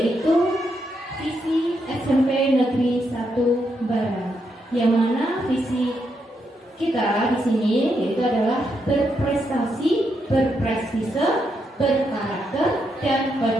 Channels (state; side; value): normal; both; correlation 0.80